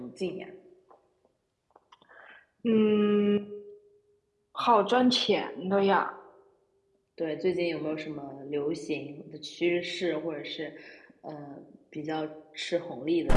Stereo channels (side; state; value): both; identical; correlation 1.00